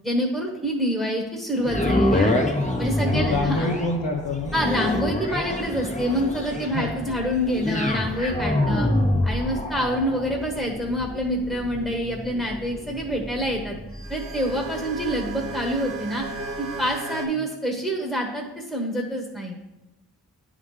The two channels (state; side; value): normal; both; correlation 0.51